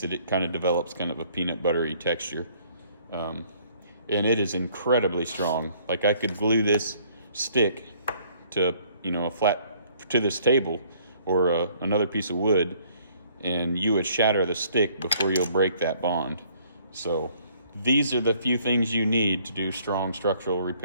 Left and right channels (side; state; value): both; inverted; correlation -0.61